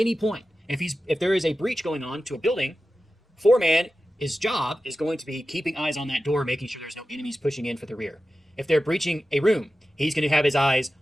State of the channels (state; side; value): normal; both; correlation 0.93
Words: point. If there is a breach going on to a building, 4 man, his job is going to be keeping eyes on that door, making sure there's no enemies pushing in for the rear. If they're breaching a room, he's going to have his eyes